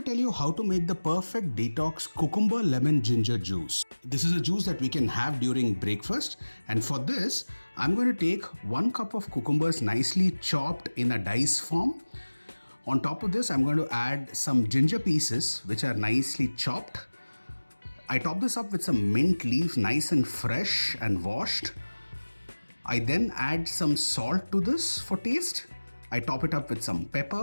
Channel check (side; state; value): both; inverted; correlation -1.00